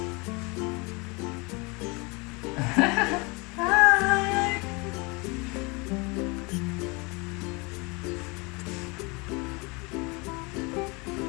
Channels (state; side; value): quieter; right; 27.9 dB